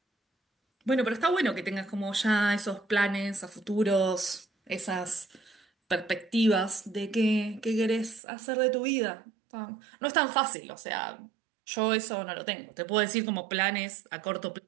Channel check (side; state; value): left; drops out; at 8.2 s